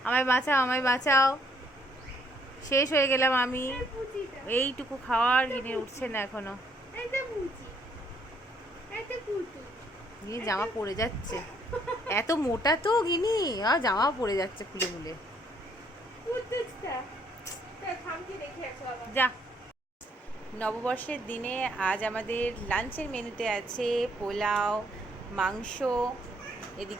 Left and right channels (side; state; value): both; normal; correlation 0.68